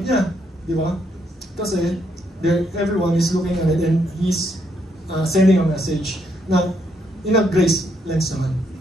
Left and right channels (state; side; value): normal; both; correlation 0.75